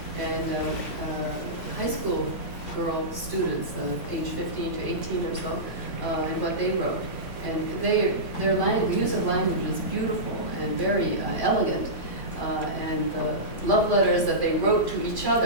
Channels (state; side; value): late; left; 3.5 ms